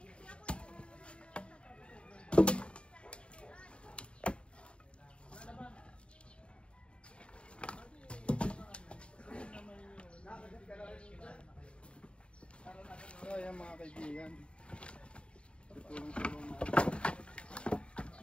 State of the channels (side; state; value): right; late; 0.057 ms